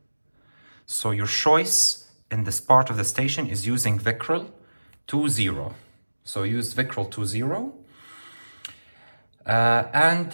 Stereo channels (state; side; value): inverted; both; correlation -1.00